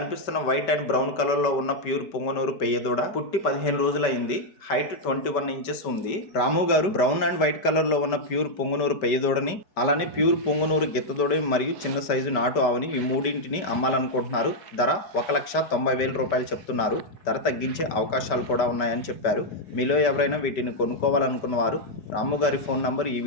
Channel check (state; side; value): late; right; 5.1 ms